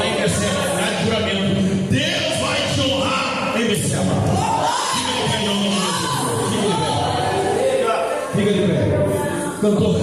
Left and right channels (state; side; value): identical; both; correlation 1.00